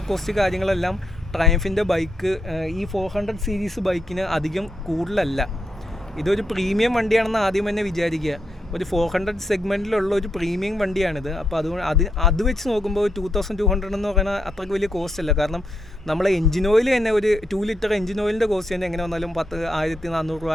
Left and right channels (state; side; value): normal; both; correlation 0.81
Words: കോസ്റ്റ് കാര്യങ്ങളെല്ലാം ട്രയംഫിൻ്റെ ബൈക്ക് ഈ 400 സീരീസ് ബൈക്കിന് അധികം കൂടുതലല്ല. ഇതൊരു പ്രീമിയം വണ്ടിയാണെന്ന് ആദ്യം തന്നെ വിചാരിക്കുക. ഒരു 400 സെഗ്മെൻറ്റിലുള്ള ഒരു പ്രീമിയം വണ്ടിയാണിത്. അപ്പോൾ അതുകൊണ്ട് അത് വെച്ച് നോക്കുമ്പോൾ 2200 എന്ന് പറയുന്നത് അത്രയ്ക്ക് വലിയ കോസ്റ്റ് അല്ല. കാരണം നമ്മളെ എഞ്ചിൻ ഓയിൽ തന്നെ ഒരു 2 ലിറ്റർ എഞ്ചിൻ ഓയിലിൻ്റെ കോസ്റ്റ് തന്നെ എങ്ങനെ വന്നാലും 1400 രൂപ